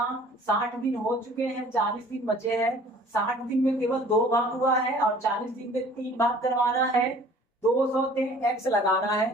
60 दिन हो चुके हैं, 40 दिन बचे हैं। 60 दिन में केवल 2 भाग हुआ है और 40 दिन में 3 भाग करवाना है, 200 से X लगाना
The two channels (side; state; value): both; normal; correlation 0.51